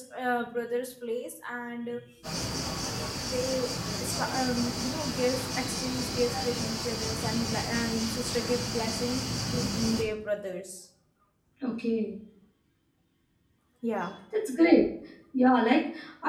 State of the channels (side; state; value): both; identical; correlation 1.00